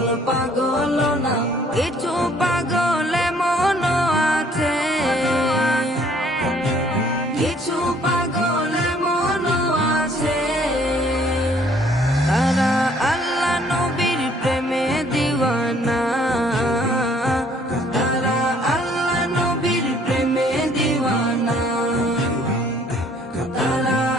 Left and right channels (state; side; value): normal; both; correlation 0.60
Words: পাগল না। কিছু পাগল মন আছে, কিছু পাগল মন আছে। তারা আল্লাহ নবীর প্রেমে দিওয়ানা,